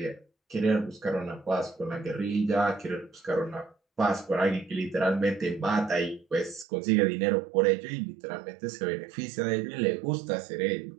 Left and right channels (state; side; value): drops out; left; at 6.7 s